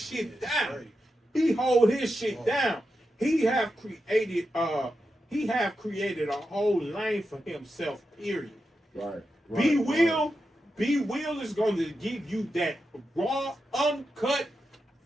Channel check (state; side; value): normal; both; correlation 0.88